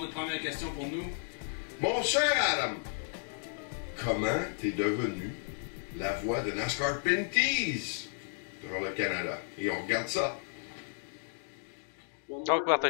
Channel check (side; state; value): right; silent; 56 dB below the other